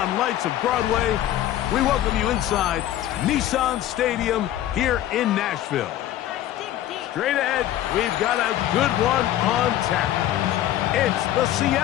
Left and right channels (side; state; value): right; quieter; 12.8 dB